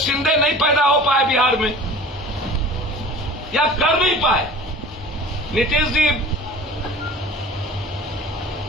नहीं पैदा हो पाए बिहार में या कर नहीं पाए। नीतीश जी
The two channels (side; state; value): both; normal; correlation 0.41